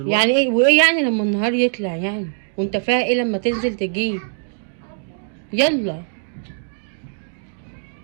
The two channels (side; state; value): left; silent; digital silence